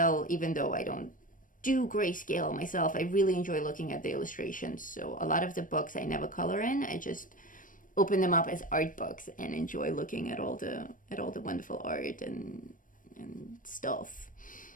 even though I don't do grayscale myself. I really enjoy looking at the illustrations. So a lot of the books I never color in. I just open them up as art books and enjoy looking at all the wonderful art and stuff.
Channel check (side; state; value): right; late; 0.39 ms